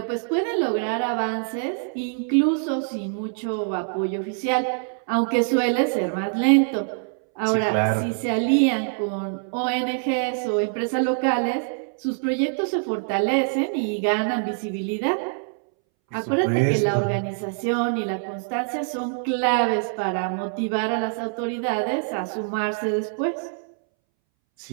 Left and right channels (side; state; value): left; silent; 62 dB below the other